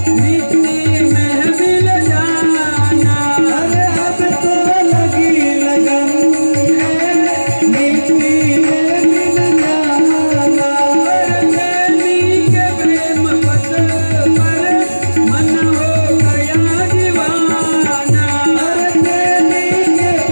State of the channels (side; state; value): both; inverted; correlation -1.00